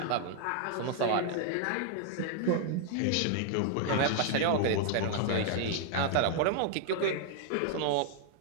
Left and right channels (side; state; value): both; different; correlation 0.00